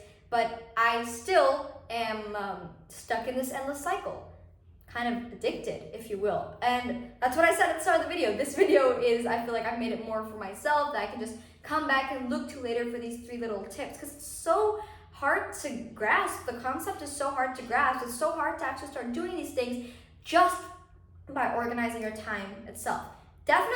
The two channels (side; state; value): both; identical; correlation 1.00